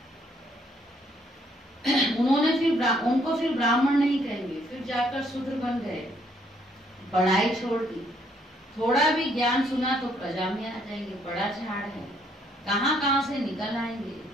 उनको फिर ब्राह्मण नहीं कहेंगे, फिर जाकर शूद्र बन गए, पढ़ाई छोड़ दी। थोड़ा भी ज्ञान सुना तो प्रजा में आ जाएंगे, बड़ा झाड़ है, कहाँ से निकल आएंगे।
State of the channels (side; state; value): both; normal; correlation 0.68